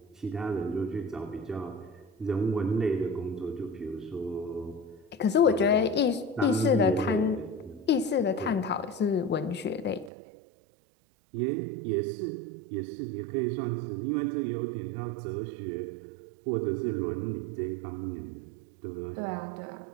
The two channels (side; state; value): left; drops out; at 10.1 s